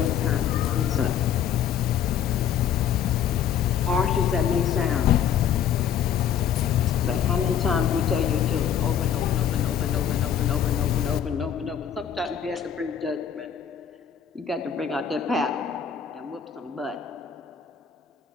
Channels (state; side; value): quieter; right; 8.8 dB